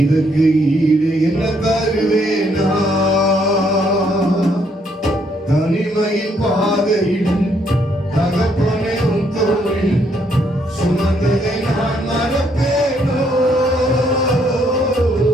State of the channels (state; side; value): normal; both; correlation 0.71